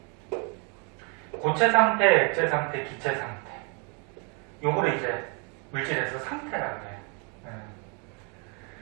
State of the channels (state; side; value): quieter; left; 35.4 dB